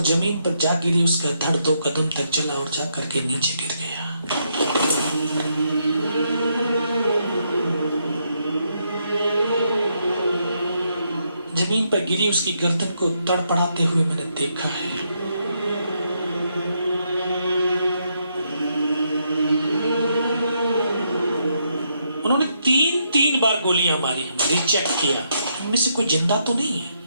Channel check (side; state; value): both; inverted; correlation -0.78